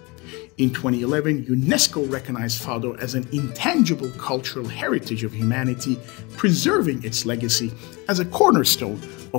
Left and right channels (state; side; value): quieter; right; 26.5 dB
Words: In 2011, UNESCO recognized Fado as an intangible cultural heritage of humanity, preserving its legacy as a cornerstone